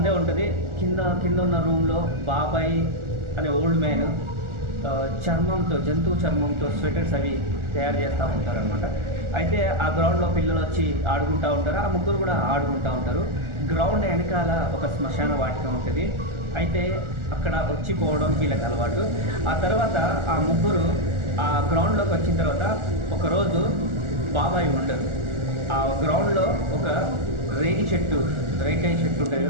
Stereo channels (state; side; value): late; left; 1.4 ms